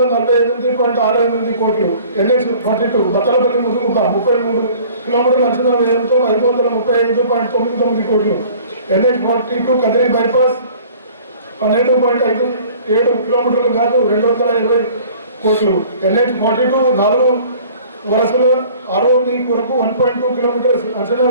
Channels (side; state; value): both; inverted; correlation -0.49